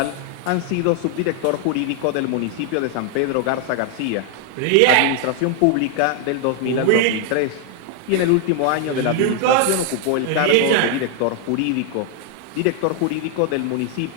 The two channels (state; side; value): different; both; correlation 0.01